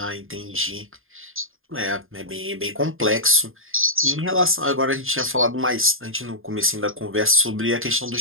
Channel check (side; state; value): left; late; 0.60 ms